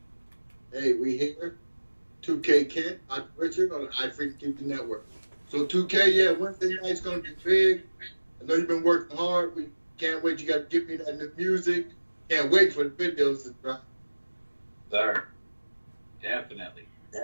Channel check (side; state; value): both; inverted; correlation -1.00